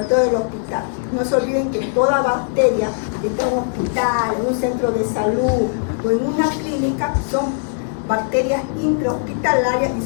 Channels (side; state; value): right; silent; 66 dB below the other